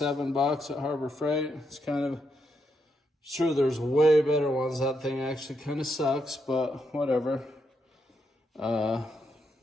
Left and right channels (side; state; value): both; normal; correlation 0.80